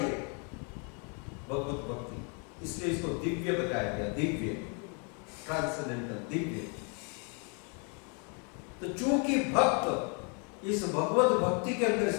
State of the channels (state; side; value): quieter; right; 36.9 dB